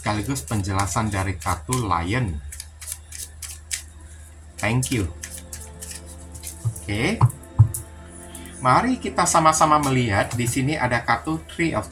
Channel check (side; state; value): both; identical; correlation 1.00